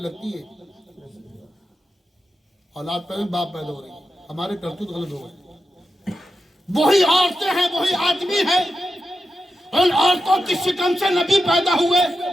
ہے، اولاد پیدا باپ پیدا ہو رہی ہے، ہمارے کرتوت غلط ہو گئے۔ وہی عورتیں ہیں وہی آدمی ہیں، ان عورتوں کی شکم سے نبی پیدا ہوئے،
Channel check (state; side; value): normal; both; correlation 0.89